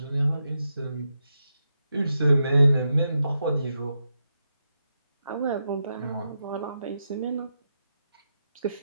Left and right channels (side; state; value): both; inverted; correlation -0.85